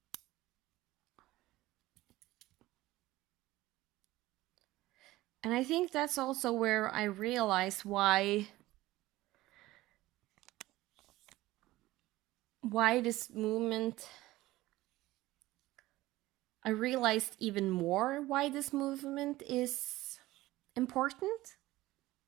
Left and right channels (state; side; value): quieter; left; 17.6 dB